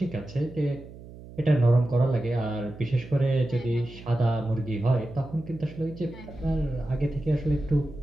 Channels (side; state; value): right; noise; hum, 17 dB below the sound